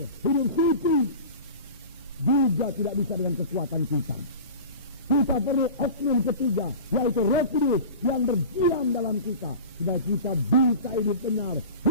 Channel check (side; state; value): both; inverted; correlation -0.35